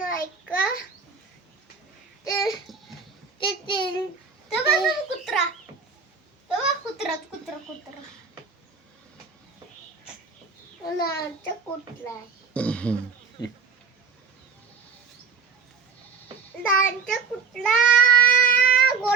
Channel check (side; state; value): left; quieter; 5.5 dB